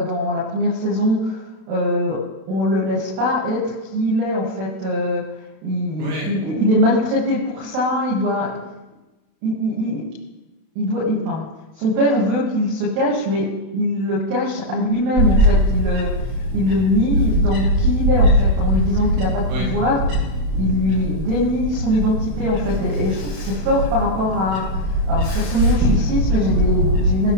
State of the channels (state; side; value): late; left; 32 ms